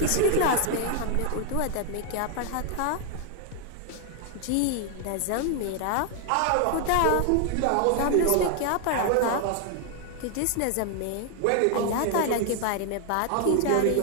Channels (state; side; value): different; both; correlation 0.00